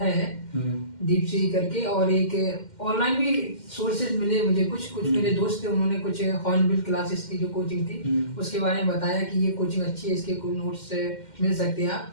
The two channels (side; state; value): right; late; 2.1 ms